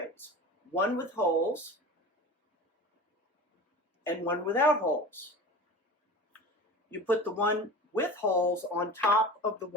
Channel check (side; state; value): both; normal; correlation 0.34